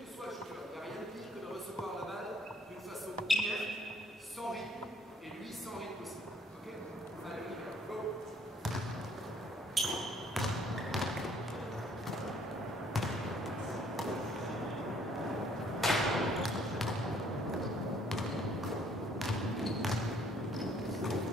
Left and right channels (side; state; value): both; normal; correlation 0.62